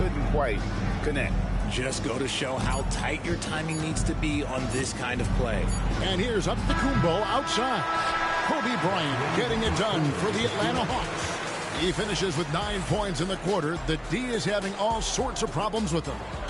quite connect. Just go to show how tight your timing needs to be on this kind of play. And here's Antetokounmpo outside. Kobe Bryant getting it done for the Atlanta Hawks. He finishes with 9 points in the quarter. The D is having all sorts of problems with him.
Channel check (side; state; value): both; identical; correlation 1.00